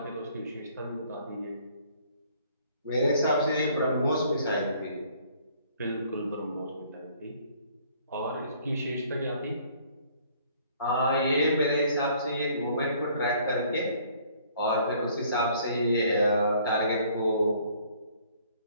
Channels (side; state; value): both; inverted; correlation -0.59